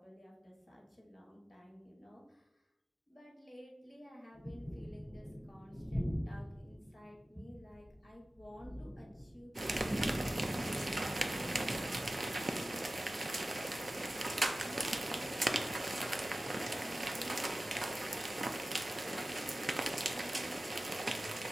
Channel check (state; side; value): normal; both; correlation 0.96